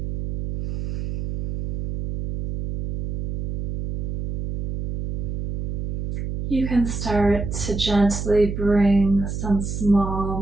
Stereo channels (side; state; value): right; noise; hum, 3 dB below the sound